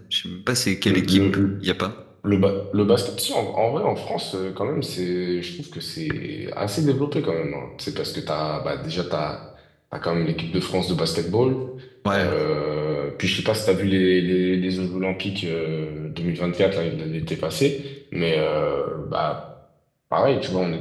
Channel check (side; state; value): both; identical; correlation 1.00